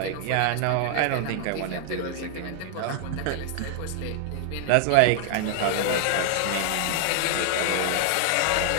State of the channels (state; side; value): different; both; correlation 0.00